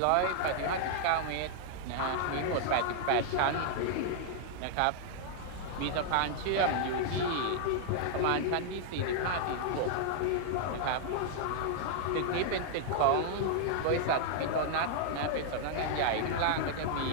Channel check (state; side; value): different; both; correlation -0.01